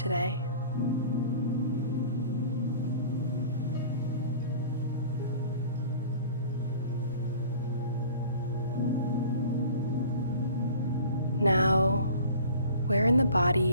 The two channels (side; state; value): both; inverted; correlation -0.44